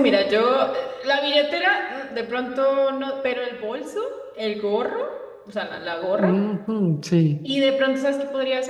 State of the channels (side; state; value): both; identical; correlation 1.00